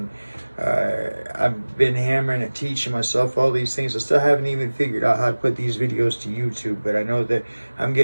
I've been hammering and teaching myself all these things. I still haven't even figured out how to put these videos to YouTube, but I know that I'm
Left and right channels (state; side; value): inverted; both; correlation -1.00